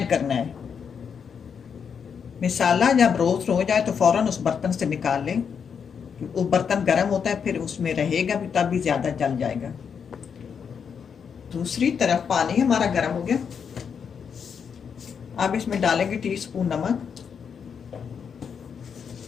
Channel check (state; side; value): quieter; right; 6.8 dB